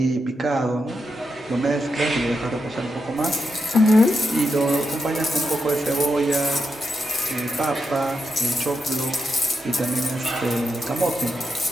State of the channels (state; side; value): normal; both; correlation 0.85